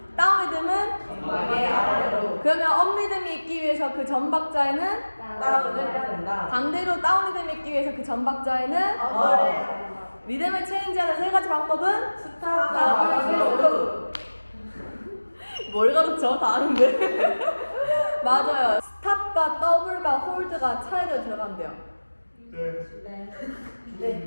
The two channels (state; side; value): inverted; both; correlation -1.00